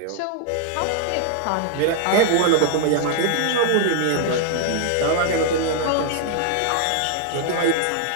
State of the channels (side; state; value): both; different; correlation 0.00